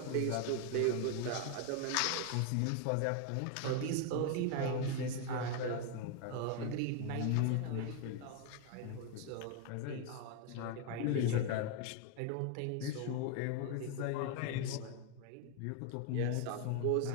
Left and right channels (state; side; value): different; both; correlation 0.01